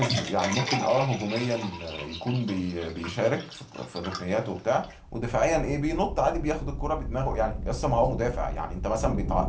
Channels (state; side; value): identical; both; correlation 1.00